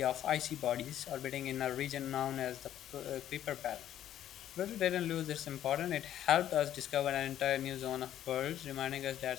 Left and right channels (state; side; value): quieter; right; 11.4 dB